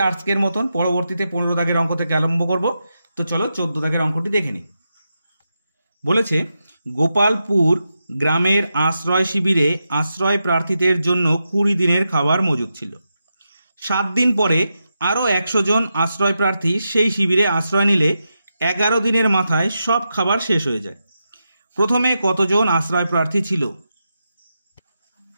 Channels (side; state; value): both; inverted; correlation -0.87